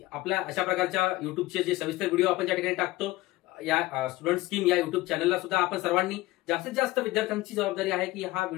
आपल्या अशा प्रकारच्या युट्यूबचे जे सविस्तर व्हिडिओ आपण ज्या ठिकाणी टाकतो, या स्टुडंट स्कीम या युट्यूब चॅनलला सुद्धा आपण सर्वांनी जास्तीत जास्त विद्यार्थ्यांची जबाबदारी आहे की हा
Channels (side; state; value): right; quieter; 18.5 dB